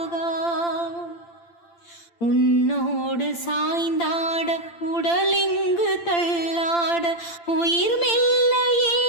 உன்னோடு சாய்ந்தாட உடலிங்கு தள்ளாட உயிர் மெல்ல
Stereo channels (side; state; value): right; late; 8.8 ms